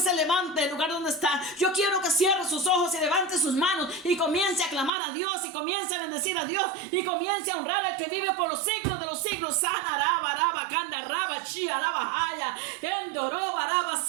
levante del lugar donde está. Yo quiero que cierre sus ojos y levante sus manos y comience a clamar a Dios y comience a bendecir a Dios y comience a honrar al que vive por los siglos de los siglos. Sana, raba, raba, kanda, raba, chia, raba, haya. Endoroba, raba,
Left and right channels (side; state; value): left; drops out; at 4.9 s